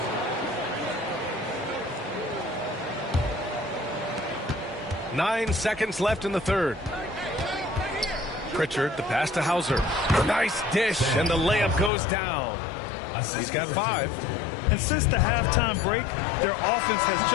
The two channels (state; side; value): drops out; right; at 11.9 s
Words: Nine seconds left in the third. Pritchard, the pass to Hauser. Nice dish, and the layup goes down. He's got 5. And since the halftime break, their offense has